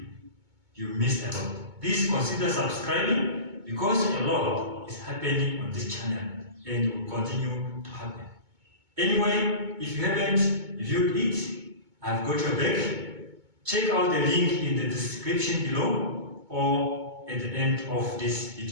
you missed a lot. Please consider subscribing because a lot is happening on this channel and will continue to happen. Anyway, if you haven't viewed it, I've got your back. Check out the link in the description below or at the end of this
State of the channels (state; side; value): late; left; 2.2 ms